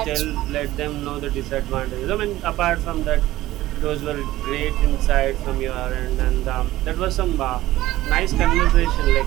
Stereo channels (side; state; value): left; quieter; 16.0 dB